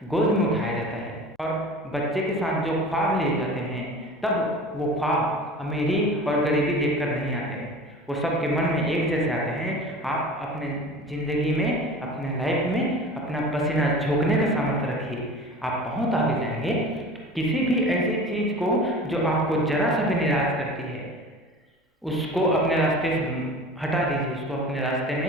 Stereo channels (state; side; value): normal; both; correlation 0.38